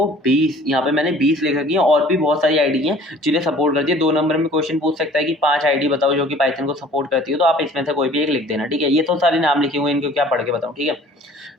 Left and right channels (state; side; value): normal; both; correlation 0.51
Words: 20, यहाँ पे मैंने 20 लिख रखी है, और भी बहुत सारी आईडी हैं जिन्हें सपोर्ट करती है। 2 नंबर में क्वेश्चन पूछ सकता है कि 5 आईडी बताओ जो कि पाइथन को सपोर्ट करती है, तो आप इसमें से कोई भी एक लिख देना, ठीक है। ये तो सारे नाम लिखे हुए हैं, इनको क्या पढ़ के बताऊँ, ठीक है।